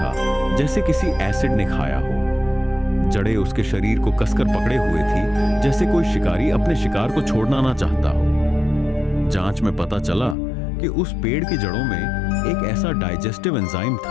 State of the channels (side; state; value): right; drops out; at 10.4 s